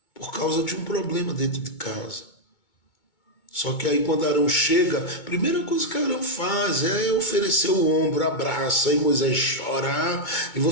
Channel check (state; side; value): late; right; 2.2 ms